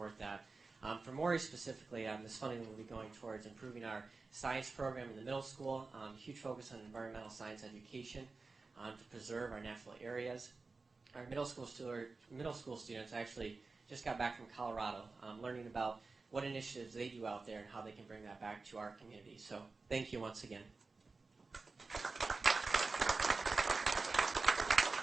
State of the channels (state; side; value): quieter; left; 3.9 dB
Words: that. For Morey specifically, this funding will be going towards improving our science program in the middle school, huge focus on environmental science education to preserve our natural areas. Our middle school students actually just got back from Colorado, learning about what initiatives they do out there and how they can bring that back to our community. So thank you once again.